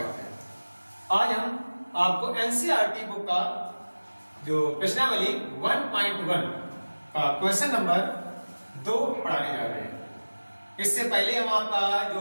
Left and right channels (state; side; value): inverted; both; correlation -1.00